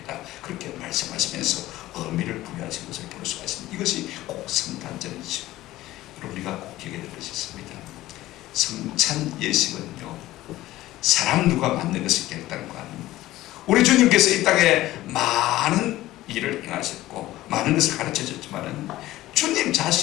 그렇게 말씀하시면서 의미를 부여하신 것을 볼 수가 있습니다. 이것이 꼭 성탄절이죠. 우리가 꼭 기억해야 될 것이 있습니다. 성찬 예식은요, 사람 누가 만든 것이 결단한 거 아닙니다. 우리 주님께서 이 땅에 많은 일을 행하셨고 많은 것을 가르쳐 줬지만은 주님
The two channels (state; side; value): quieter; right; 16.2 dB